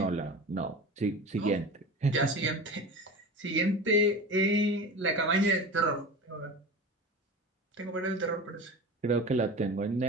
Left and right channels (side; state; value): both; normal; correlation 0.32